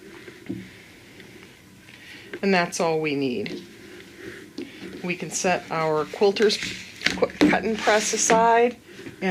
And that's all we need. We can set our quilter's cut and press aside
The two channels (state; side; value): identical; both; correlation 1.00